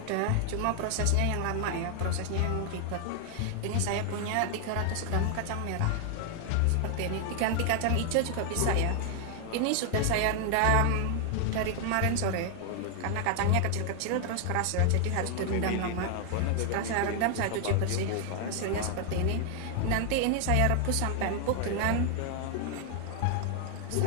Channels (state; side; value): different; both; correlation 0.00